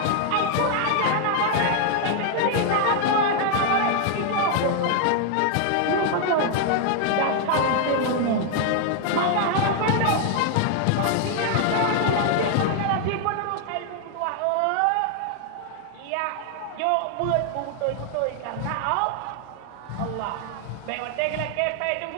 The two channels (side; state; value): both; different; correlation 0.00